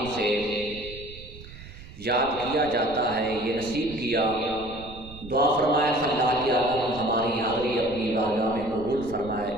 سے یاد کیا جاتا ہے، یہ نصیب کیا۔ دعا فرمائے اللہ کی عالم ہماری حاضری اپنی بارگاہ میں قبول فرمائے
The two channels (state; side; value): noise; right; rumble, 16 dB below the sound